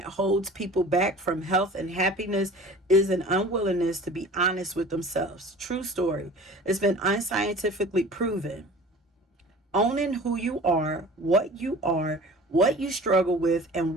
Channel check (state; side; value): normal; both; correlation 0.42